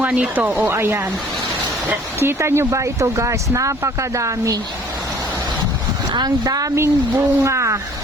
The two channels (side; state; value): both; normal; correlation 0.54